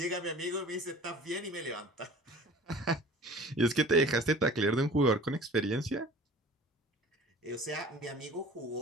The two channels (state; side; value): normal; both; correlation 0.44